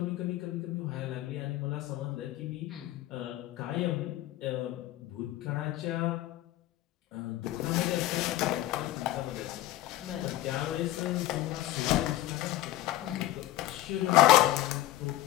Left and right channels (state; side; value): quieter; right; 15.1 dB